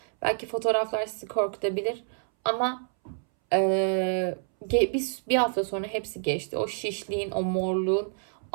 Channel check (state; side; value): silent; left; 60 dB below the other